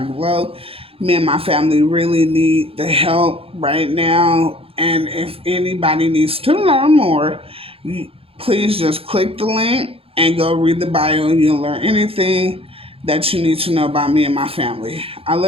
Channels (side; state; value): left; late; 0.27 ms